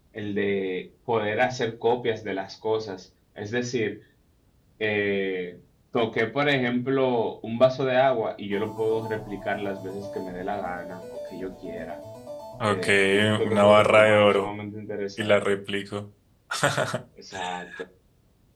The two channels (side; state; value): both; identical; correlation 1.00